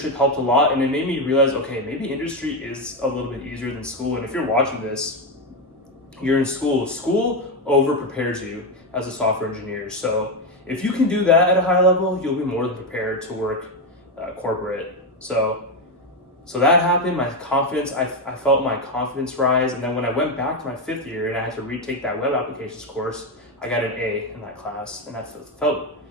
helped a lot, and it made me realize, okay, maybe industry is a little bit easier than school. And if you're watching this, you're in school. School over prepares you as a software engineer. So if you can do that at a high level, you'll be more than prepared to work corporate. So that happened. My confidence, I felt my confidence rise. And then when I went back to my fifth year and I had to retake that web applications course, I got an A in that class, and that felt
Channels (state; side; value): normal; both; correlation 0.09